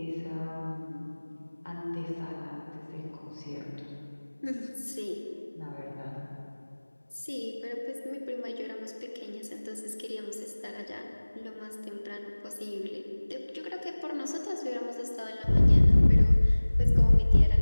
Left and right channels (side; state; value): both; inverted; correlation -1.00